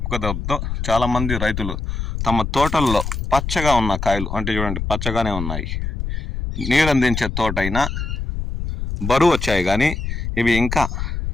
చాలామంది రైతులు తమ తోటల్లో పచ్చగా ఉన్న కాయలు అంటే చూడండి పచ్చగానే ఉన్నాయి. నీరందించే తోట అయినా బరువు వచ్చాయి కానీ ఇవి ఇంకా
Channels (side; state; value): left; noise; rumble, 4 dB below the sound